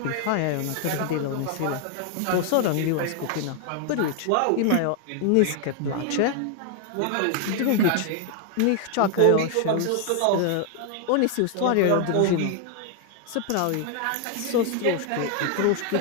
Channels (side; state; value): both; different; correlation 0.00